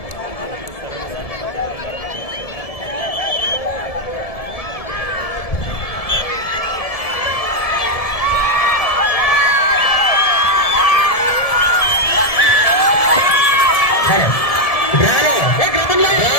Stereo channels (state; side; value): late; right; 1.7 ms